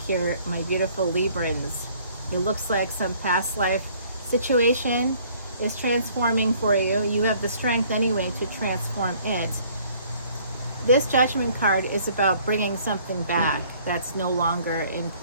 here, my beautiful Librans. It looks like some past life situation is transforming for you. You have the strength anyway to transform it. This Judgment card is about bringing something back that's no longer in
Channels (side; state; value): both; inverted; correlation -0.58